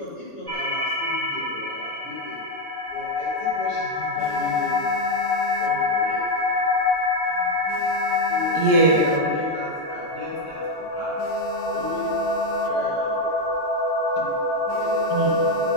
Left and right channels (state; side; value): normal; both; correlation 0.06